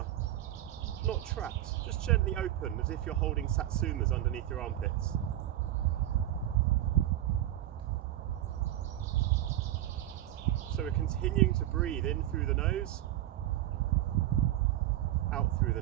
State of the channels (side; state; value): left; quieter; 13.7 dB